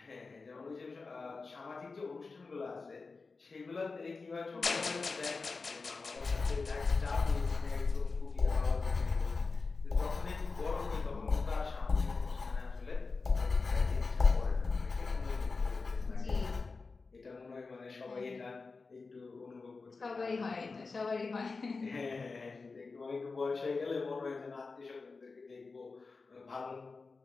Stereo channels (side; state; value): right; quieter; 4.2 dB